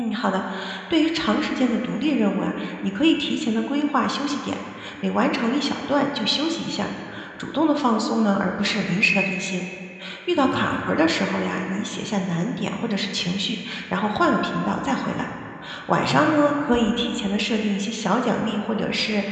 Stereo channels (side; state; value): both; identical; correlation 1.00